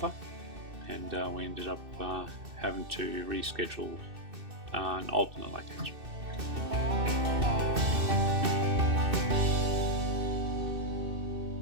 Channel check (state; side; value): late; left; 2.6 ms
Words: and we ended up having to reschedule an alternate location.